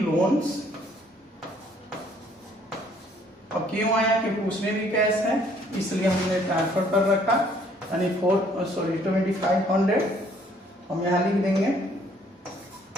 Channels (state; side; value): normal; both; correlation 0.62